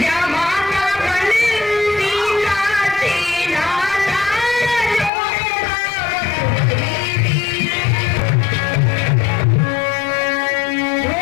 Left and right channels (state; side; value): drops out; right; at 5.1 s